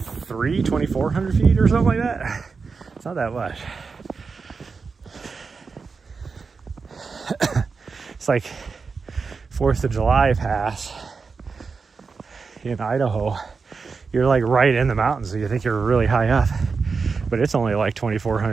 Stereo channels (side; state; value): left; quieter; 4.9 dB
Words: feet or something like that. It's not that much. It's like 4th of July Pass in Idaho. You're like right in the mountains, so you think you're really high up, but it's only like